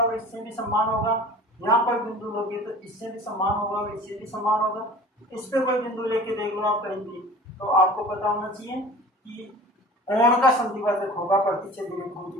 इससे भी समान होगा। यहाँ कोई बिंदु लोगे तो इससे भी समान होगा और इससे भी समान होगा। इस पे कोई बिंदु लेके देख लो आप कहीं भी, तो आपको पता होना चाहिए कि कोण का समद्विभाजक होगा प्रतिच्छेदी रेखाओं की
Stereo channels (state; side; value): normal; both; correlation 0.42